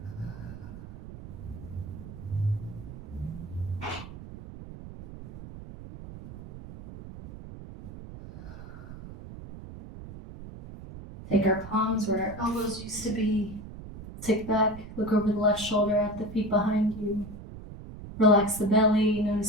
Take our palms where our elbows used to be. Tick back, look over the left shoulder at the feet behind you. Relax the belly,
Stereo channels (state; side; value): noise; right; rumble, 13 dB below the sound